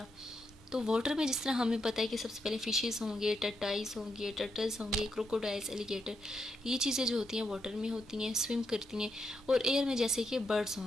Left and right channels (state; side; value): normal; both; correlation 0.81